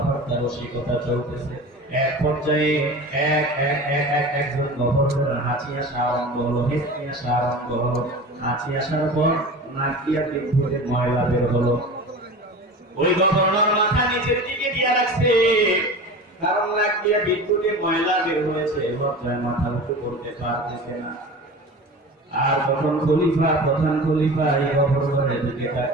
রসিকতা চলতেছে। এক পর্যায়ে একজন গভর্নর হাঁচি আসা আরম্ভ হলো, হেঁচকি আসা আরম্ভ হলো। হাঁচি আসার পর নাক দিয়া পিঠ থেকে ময়লা বের হলো। ওই গভর্নর মাথা নিচের দিকে দিয়ে রাখছে, কারণ নাক দিয়ে বিদ্যুতে ময়লা বের হয়েছে, লজ্জায় মাথা উঁচু করতে পারতেছে না। আর তখন খলিফা, প্রধান খলিফা এই গভর্নরের দিকে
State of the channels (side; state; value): both; normal; correlation 0.34